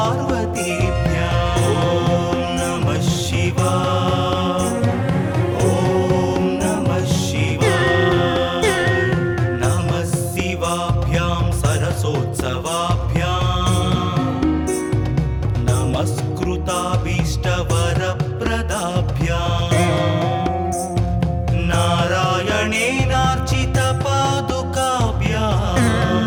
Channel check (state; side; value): identical; both; correlation 1.00